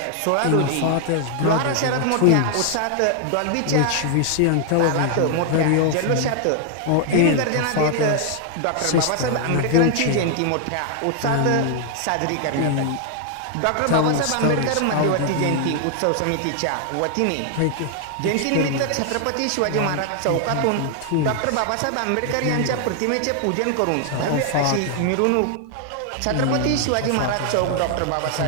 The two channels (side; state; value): both; different; correlation 0.00